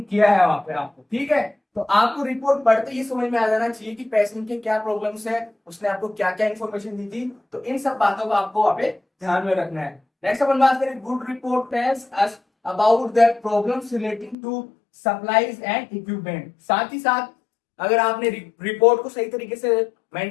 किया है वहां पे आपको, ठीक है। तो आपको रिपोर्ट पढ़ते ही समझ में आ जाना चाहिए कि पेशेंट के क्या प्रॉब्लम्स है, उसने आपको क्या क्या इन्फॉर्मेशन दी थी, तो इन सब बातों को आपको वहां पे ध्यान में रखना है। नेक्स्ट अपन बात करें, good report tells us about the problems relating to supplies and equipment. साथ ही साथ अगर आपने रिपोर्ट को सही तरीके से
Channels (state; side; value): drops out; right; at 14.4 s